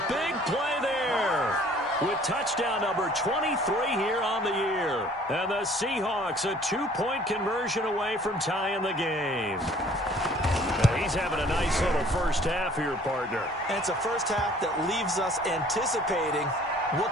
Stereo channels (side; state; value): both; normal; correlation 0.54